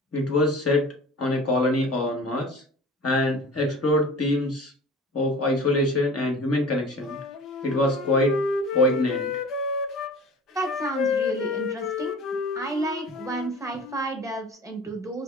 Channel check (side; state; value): both; normal; correlation 0.41